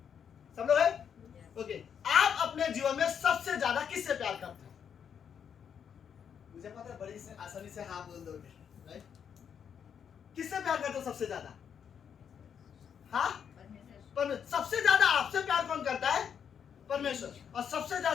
सब लोग है, ओके, आप अपने जीवन में सबसे ज्यादा किससे प्यार करते हैं? मुझे पता है बड़ी आसानी से हाँ बोल दोगे, राइट। किससे प्यार करते हो सबसे ज्यादा? हाँ, सबसे ज्यादा आपसे प्यार कौन करता है? परमेश्वर। और सबसे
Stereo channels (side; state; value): right; quieter; 7.8 dB